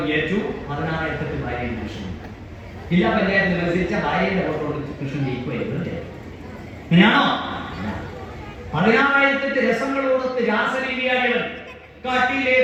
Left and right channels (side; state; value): both; identical; correlation 1.00